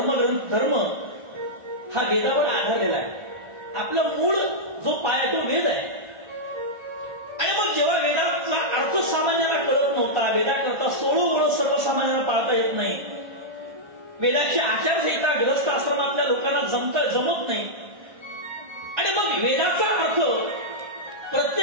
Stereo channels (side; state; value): left; late; 1.5 ms